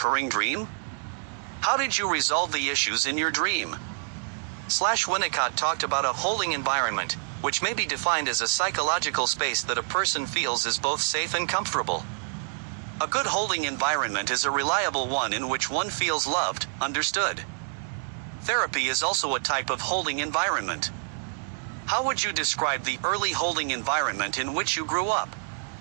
dream? How did you resolve the issues in your dream? Winnicott talked about a holding environment, which may be defined as a psychological space that a person feels is both safe and comfortable. A good holding environment is a reliable one in which one feels loved, understood. Therapy is also a type of holding environment. How would you describe the early holding environment in which you grew up?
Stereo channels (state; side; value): silent; left; digital silence